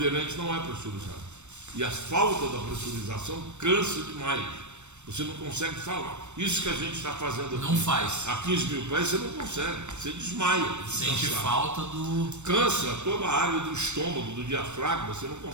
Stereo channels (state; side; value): late; left; 0.83 ms